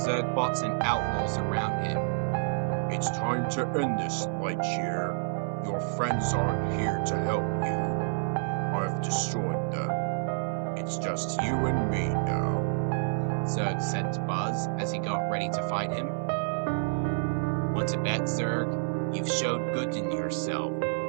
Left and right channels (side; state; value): left; silent; 59 dB below the other